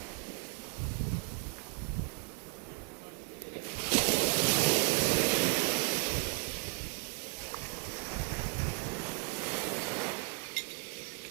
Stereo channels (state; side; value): quieter; left; 37.0 dB